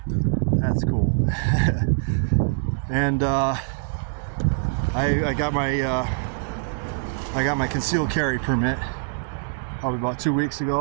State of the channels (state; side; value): silent; left; digital silence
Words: That's cool. And I got my concealed carry permit probably about 2 weeks